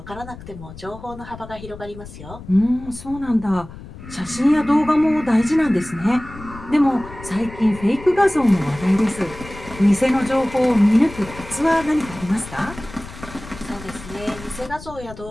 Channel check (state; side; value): noise; left; rumble, 15 dB below the sound